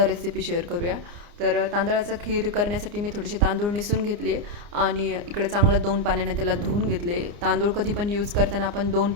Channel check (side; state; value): left; late; 29 ms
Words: रेसिपी शेअर करूया. तर तांदळाचं खीर करण्यासाठी मी थोडेसे तांदूळ निसून घेतले आणि इकडे चांगलं 2 पाण्याने त्याला धुवून घेतले. तांदूळ कधी पण यूज करताना आपण 2